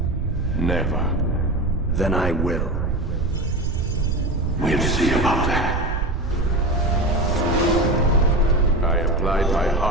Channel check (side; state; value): right; noise; rumble, 2 dB below the sound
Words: Never. Then I will. We'll see about that. I applied my